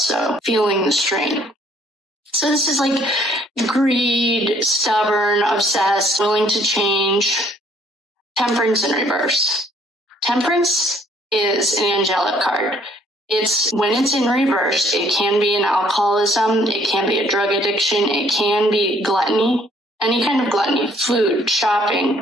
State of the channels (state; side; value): normal; both; correlation 0.62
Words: feeling the strain. So this is like greed, stubborn, obsessed, willing to change. Temperance in reverse. Temperance is an angelic card. When it's in reverse, it can be an alcoholism, it can be a drug addiction, it can be gluttony, any kind of gluttony, food,